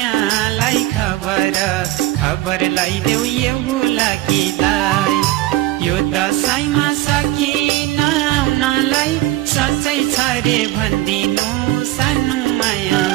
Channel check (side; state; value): left; quieter; 16.2 dB